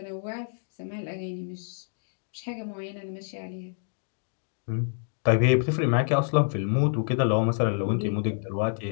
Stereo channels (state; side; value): silent; right; digital silence